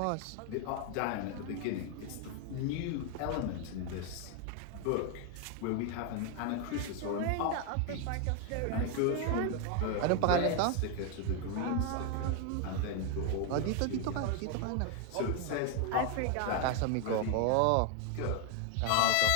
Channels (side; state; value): both; different; correlation 0.01